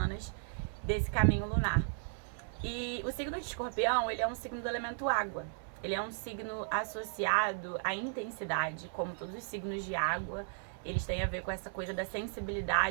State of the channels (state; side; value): silent; left; digital silence